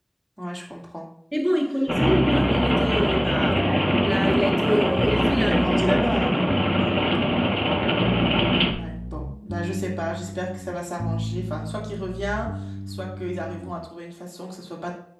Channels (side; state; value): both; identical; correlation 1.00